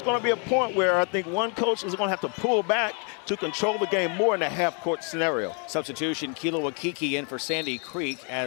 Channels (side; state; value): right; quieter; 38.2 dB